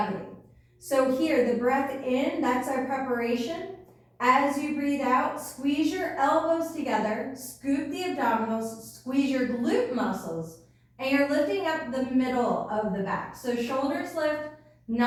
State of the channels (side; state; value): both; identical; correlation 1.00